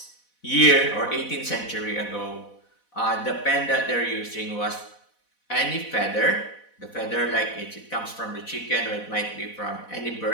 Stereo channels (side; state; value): right; late; 4.1 ms